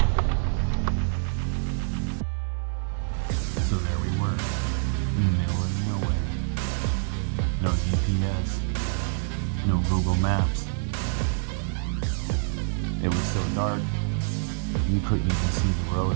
So there we were, in the middle of nowhere. No GPS, no Google Maps. It was so dark, you couldn't even see the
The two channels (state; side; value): silent; left; 61 dB below the other